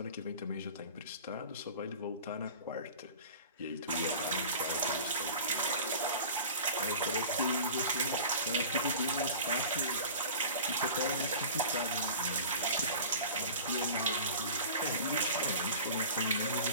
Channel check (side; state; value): both; inverted; correlation -0.39